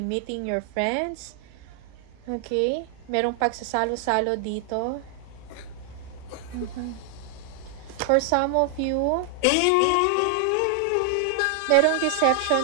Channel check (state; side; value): different; both; correlation 0.00